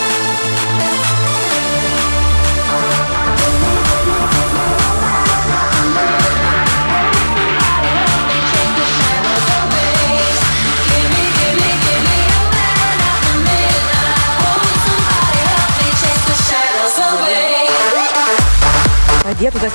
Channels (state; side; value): inverted; both; correlation -1.00